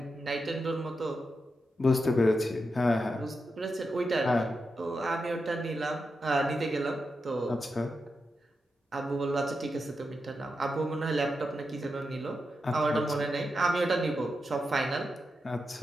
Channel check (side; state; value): both; normal; correlation 0.87